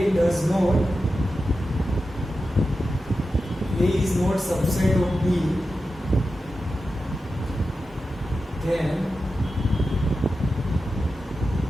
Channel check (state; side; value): normal; both; correlation 0.91